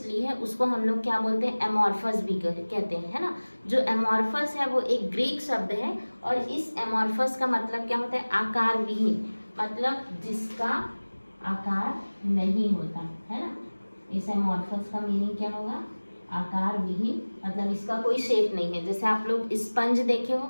है उसको हम लोग क्या बोलते हैं? एमॉर्फस भी कहते हैं, है ना। जो एमॉर्फस है वो एक ग्रीक शब्द है और इस एमॉर्फस का मतलब क्या होता है? आकार विहीन, मतलब जिसका आकार नहीं होता, है ना। इस एमॉर्फस का मीनिंग क्या होगा? आकार विहीन मतलब इसका कोई शेप नहीं है। जैसे आप लोग स्पंज देखे हो,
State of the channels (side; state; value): both; inverted; correlation -1.00